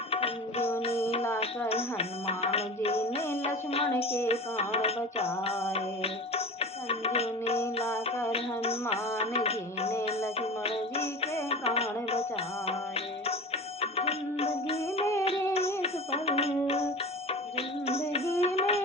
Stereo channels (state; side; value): normal; both; correlation 0.34